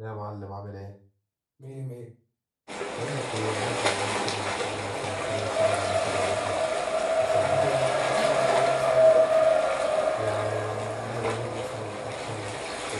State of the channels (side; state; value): both; identical; correlation 1.00